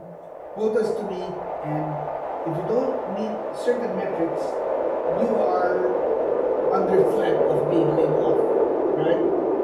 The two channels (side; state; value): both; identical; correlation 1.00